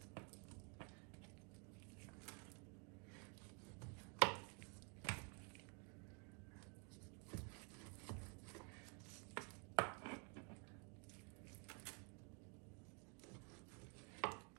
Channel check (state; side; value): quieter; left; 37.1 dB